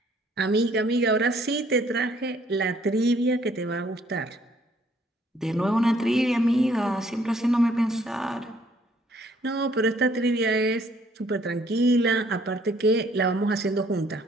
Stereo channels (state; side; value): normal; both; correlation 0.63